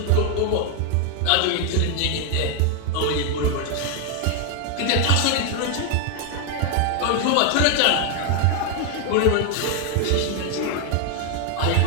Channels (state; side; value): different; both; correlation 0.00